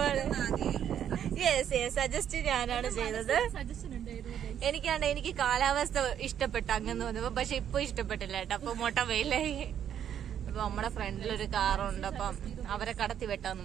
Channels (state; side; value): quieter; left; 9.5 dB